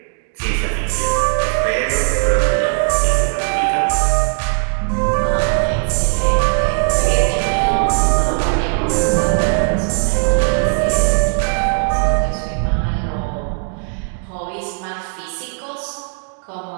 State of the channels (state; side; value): silent; left; 56 dB below the other